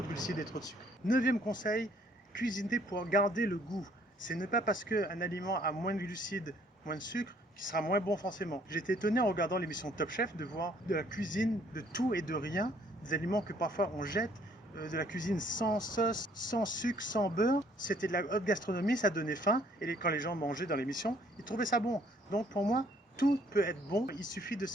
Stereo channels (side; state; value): both; normal; correlation 0.62